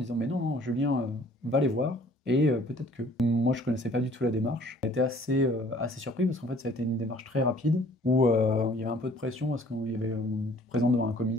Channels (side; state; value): both; normal; correlation 0.55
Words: disant, mais non, non, Julien, va les voir, et peut-être que. Moi, je connaissais pas du tout la démarche. J'ai été assez surpris parce qu'en fait, ça a été une démarche très rapide où il y avait un peu de pression parce qu'on y avait on était présent devant un